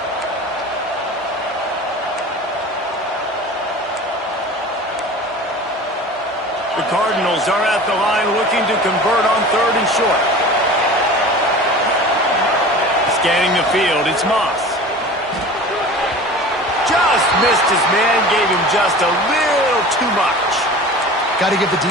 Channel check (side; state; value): both; normal; correlation 0.38